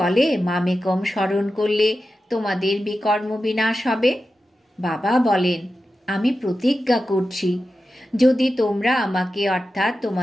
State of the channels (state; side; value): normal; both; correlation 0.92